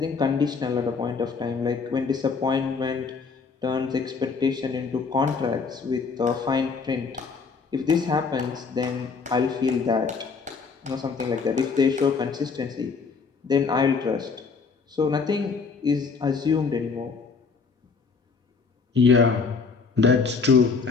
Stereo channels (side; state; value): right; quieter; 5.0 dB